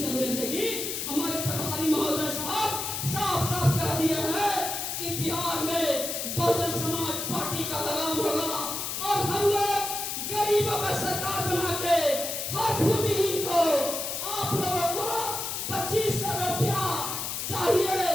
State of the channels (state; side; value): noise; left; hiss, 3 dB below the sound